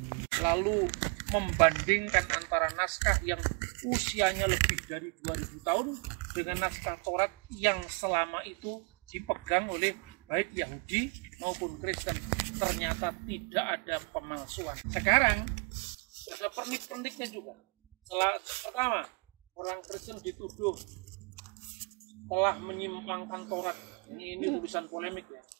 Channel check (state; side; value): quieter; left; 34.1 dB